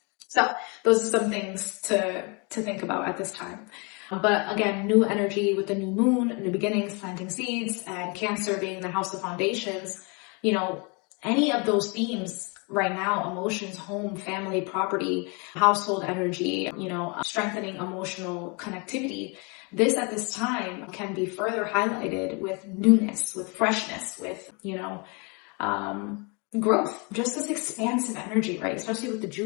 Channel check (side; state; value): right; quieter; 32.1 dB